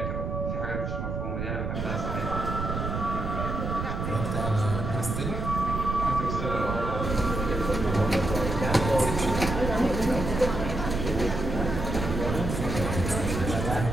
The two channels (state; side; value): noise; right; rumble, 3 dB below the sound